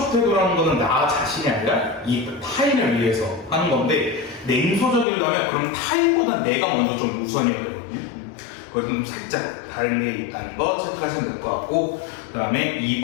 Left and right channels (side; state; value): right; drops out; at 5.1 s